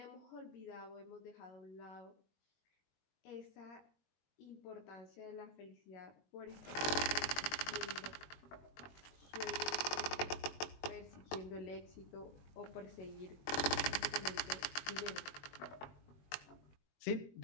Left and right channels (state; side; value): late; right; 21 ms